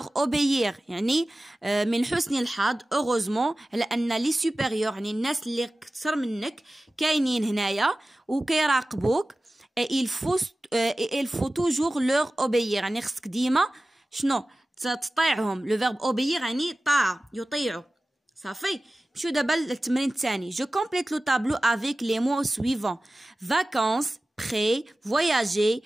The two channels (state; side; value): normal; both; correlation 0.96